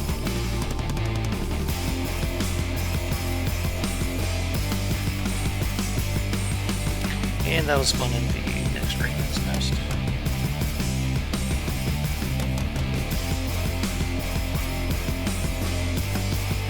And that'll spawn in the next ring that's nest.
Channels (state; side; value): identical; both; correlation 1.00